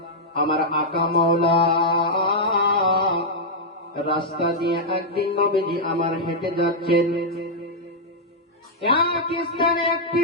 আমার আকা মাওলা রাস্তা দিয়ে একদিন নবীজি আমার হেঁটে যাচ্ছেন। এক স্থানে একটি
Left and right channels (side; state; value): both; normal; correlation -0.05